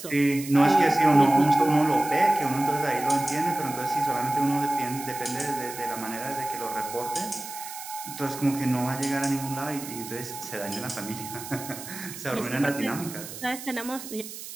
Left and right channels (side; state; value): right; noise; hiss, 11 dB below the sound